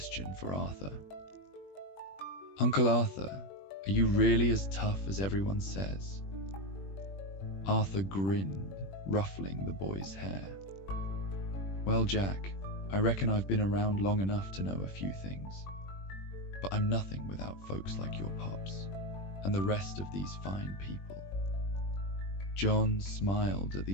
for Arthur. Uncle Arthur, are you really as tough as everyone says? Arthur grinned, ruffling the boy's hair. Well, Jack, I reckon I've been around long enough to know a few things, but I'm nothing without folks like your pops and the rest of these fine people. John smiled at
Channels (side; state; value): right; late; 21 ms